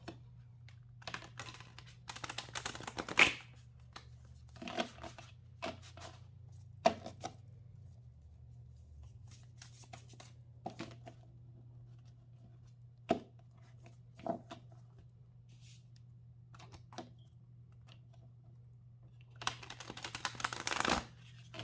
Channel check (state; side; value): identical; both; correlation 1.00